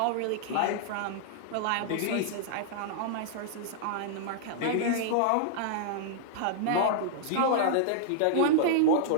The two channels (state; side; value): different; both; correlation -0.01